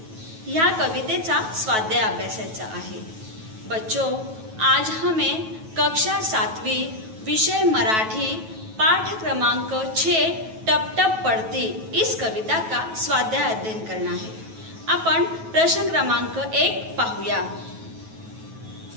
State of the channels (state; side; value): late; left; 9.2 ms